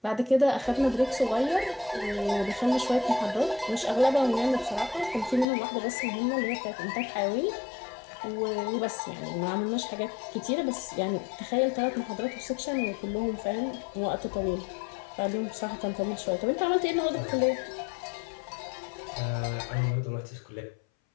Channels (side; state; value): right; drops out; at 5.5 s